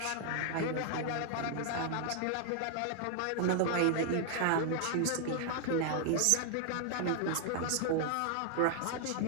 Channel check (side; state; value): both; different; correlation 0.00